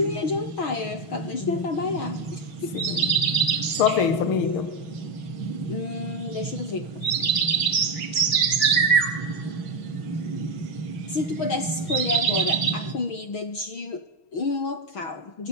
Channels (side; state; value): right; late; 6.3 ms